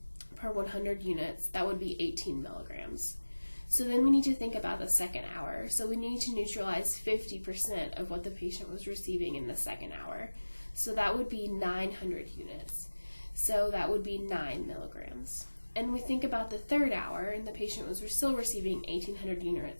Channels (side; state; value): both; inverted; correlation -1.00